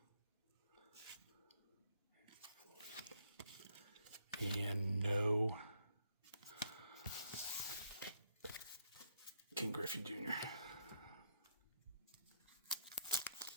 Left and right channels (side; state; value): both; inverted; correlation -0.73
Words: And no King Griffey Jr.